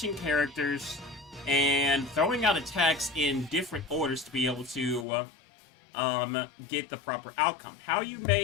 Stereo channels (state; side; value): drops out; right; at 5.1 s